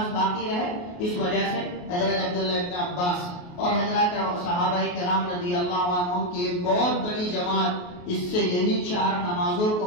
باقی رہے۔ اس وجہ سے حضرت عبداللہ ابن عباس اور حضرات صحابہ کرام رضی اللہ عنہم کی ایک بہت بڑی جماعت اس سے یہی 4 نمازوں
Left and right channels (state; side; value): late; right; 28 ms